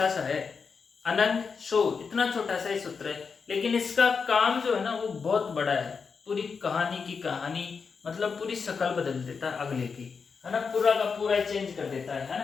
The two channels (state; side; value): quieter; right; 5.5 dB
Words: सा है, अनंग सौ इतना छोटा सा ही सूत्र है, लेकिन इसका काम जो है ना वो बहुत बड़ा है। पूरी कहानी की कहानी मतलब पूरी शक्ल बदल देता है अगले की, है ना, पूरा का पूरा चेंज कर देता है ना।